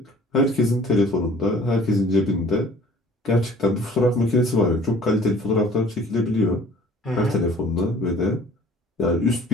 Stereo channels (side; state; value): both; normal; correlation 0.52